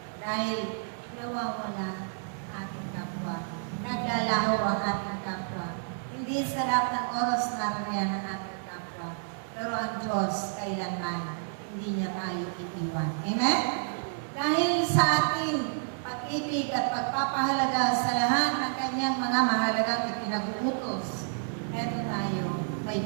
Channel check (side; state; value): left; silent; digital silence